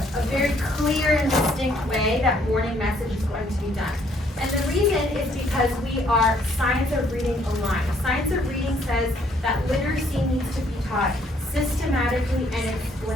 very clear and distinct way that morning message is going to be done. And the reason is because we are science of reading aligned. Science of reading says that literacy needs to be taught systematically and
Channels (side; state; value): both; normal; correlation 0.65